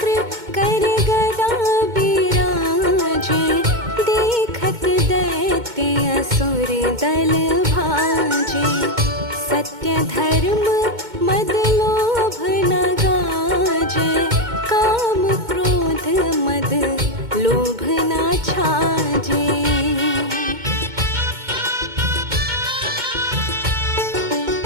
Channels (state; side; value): late; left; 2.2 ms